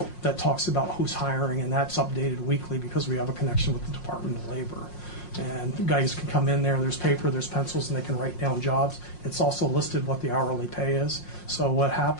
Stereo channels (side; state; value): right; late; 5.6 ms